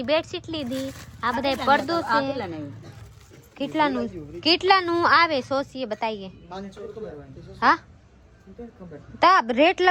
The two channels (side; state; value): both; identical; correlation 1.00